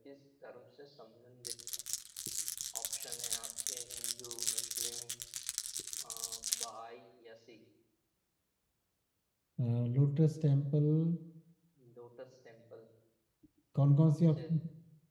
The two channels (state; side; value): identical; both; correlation 1.00